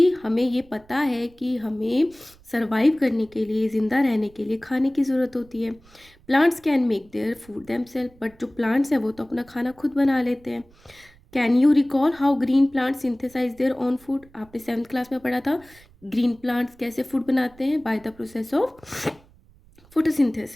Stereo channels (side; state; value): right; noise; rumble, 27 dB below the sound